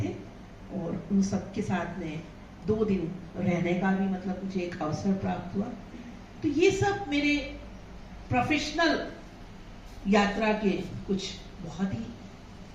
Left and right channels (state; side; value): identical; both; correlation 1.00